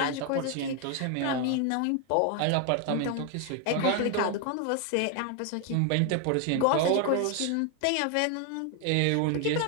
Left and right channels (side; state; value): both; different; correlation 0.01